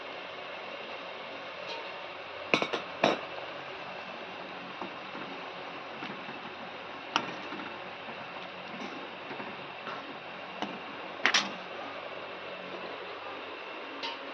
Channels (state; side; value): identical; both; correlation 1.00